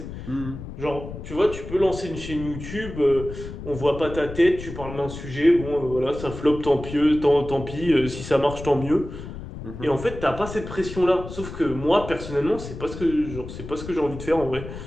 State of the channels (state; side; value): noise; left; rumble, 10 dB below the sound